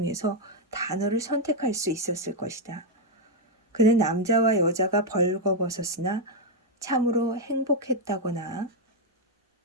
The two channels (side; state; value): both; normal; correlation 0.00